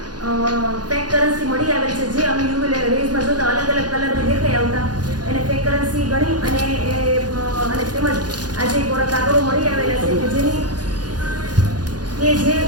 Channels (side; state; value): left; late; 0.69 ms